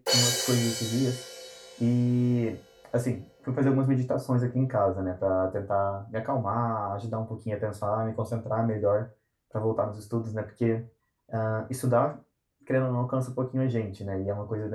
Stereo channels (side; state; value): both; identical; correlation 1.00